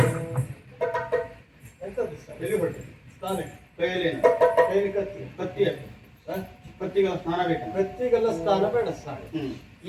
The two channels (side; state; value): both; identical; correlation 1.00